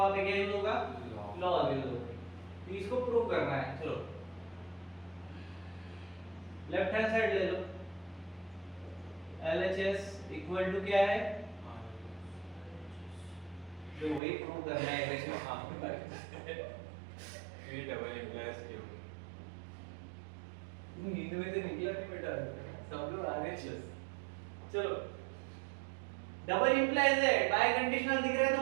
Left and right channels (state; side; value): drops out; left; at 14.2 s